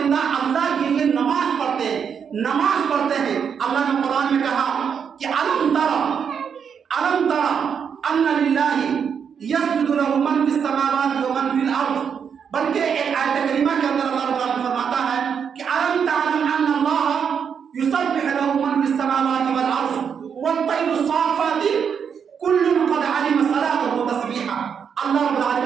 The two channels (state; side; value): quieter; left; 7.1 dB